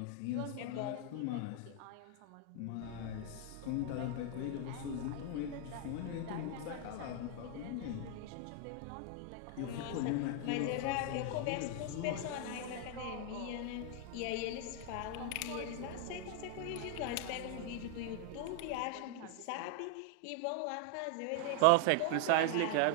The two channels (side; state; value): both; different; correlation 0.00